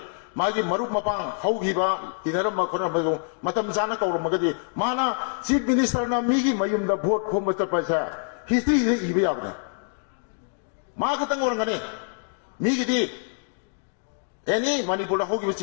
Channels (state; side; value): silent; right; digital silence